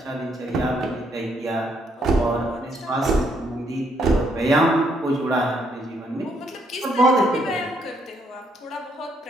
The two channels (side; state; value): both; normal; correlation 0.72